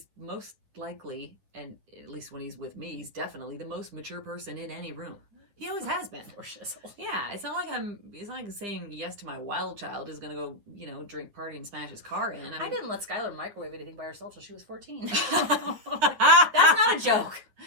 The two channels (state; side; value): late; left; 9.9 ms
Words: most likely, and at least when he's with me, he's definitely the most mature person in any room. He always has been. Poor shizzle. Yeah, it's not like saying yes to my wild child is going to go, you know, drink, party, and smash his car in. I didn't let Skylar microwave anything by herself till she was 14. That's That's not a joke.